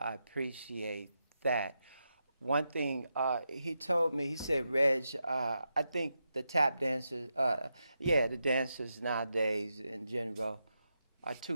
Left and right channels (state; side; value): inverted; both; correlation -0.86